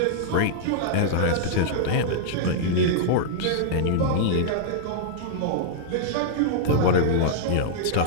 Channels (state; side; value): different; both; correlation -0.02